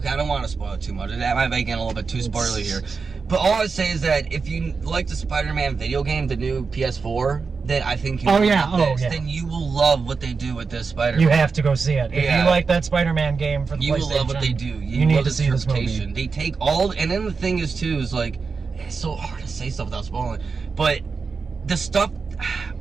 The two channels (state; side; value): quieter; left; 4.9 dB